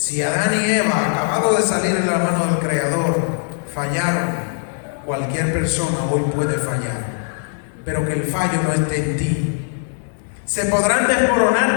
Adán y Eva, acabados de salir de la mano del Creador, fallaron, cualquier persona hoy puede fallar, pero que el fallo no esté en ti. Se podrán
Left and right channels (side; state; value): right; silent; 63 dB below the other